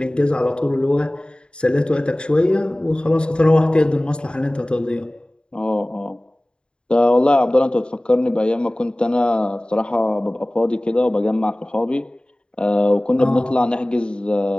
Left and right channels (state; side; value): late; right; 0.051 ms